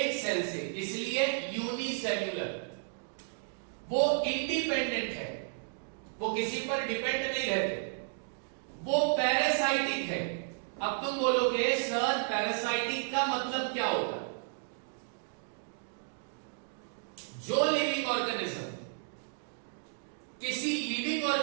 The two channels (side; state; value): left; silent; digital silence